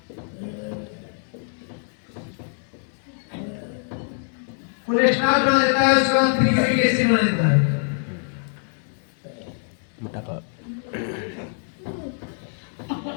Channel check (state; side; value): silent; right; 59 dB below the other